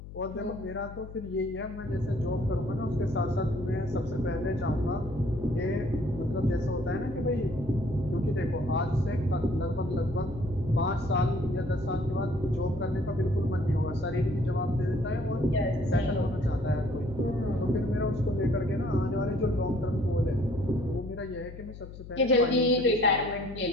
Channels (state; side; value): noise; left; hum, 13 dB below the sound